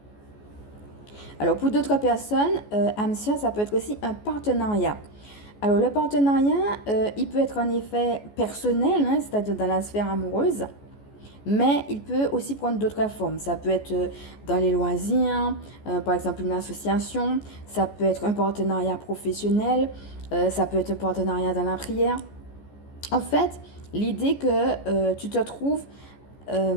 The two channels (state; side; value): late; right; 14 ms